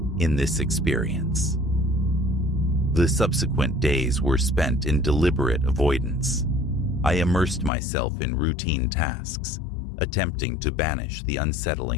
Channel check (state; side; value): drops out; right; at 7.7 s